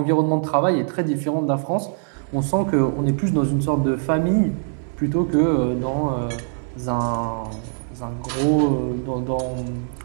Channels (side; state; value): left; silent; 64 dB below the other